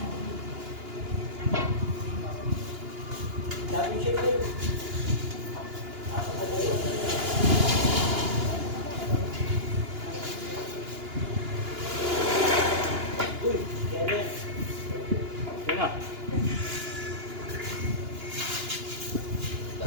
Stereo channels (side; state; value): left; late; 2.9 ms